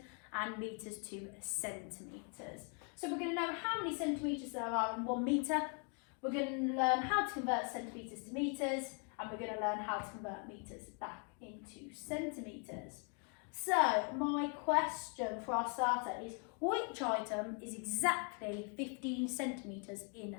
and metres to centimetres. So we're going to know how many centimetres there are in 1 metre, we're going to learn how to convert centimetres to metres, and we're going to learn how to convert metres back into centimetres. So my question for our starter is, which item is exactly 15 centimetres in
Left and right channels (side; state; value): right; quieter; 38.0 dB